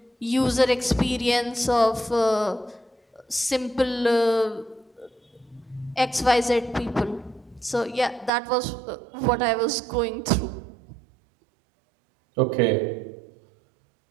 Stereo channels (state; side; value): drops out; left; at 8.3 s